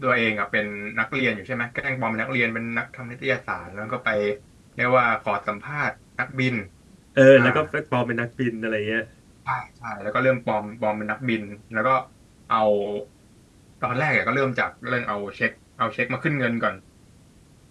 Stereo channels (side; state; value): both; identical; correlation 1.00